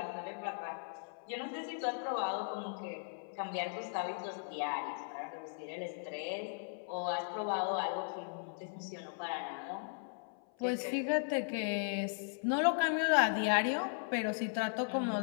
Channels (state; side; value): silent; right; 53 dB below the other